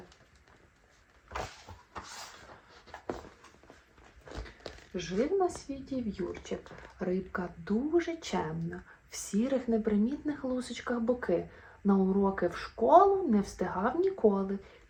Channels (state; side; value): identical; both; correlation 1.00